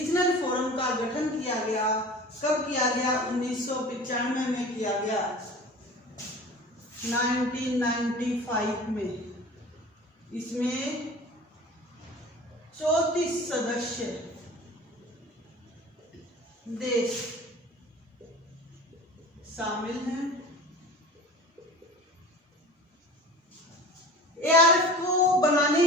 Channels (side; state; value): both; normal; correlation 0.39